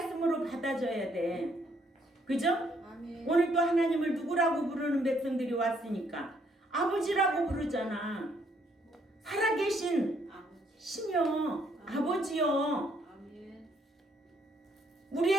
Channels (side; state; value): both; normal; correlation 0.69